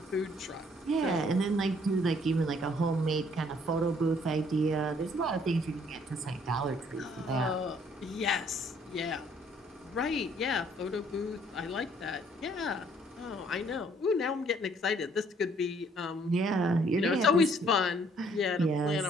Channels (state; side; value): normal; both; correlation 0.63